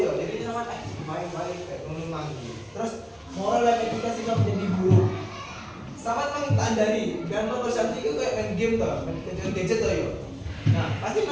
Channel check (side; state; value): both; identical; correlation 1.00